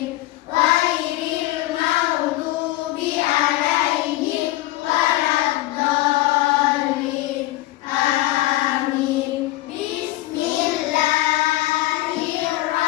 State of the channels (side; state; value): right; quieter; 17.3 dB